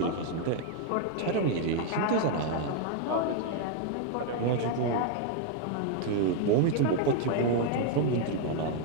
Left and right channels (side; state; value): both; different; correlation 0.00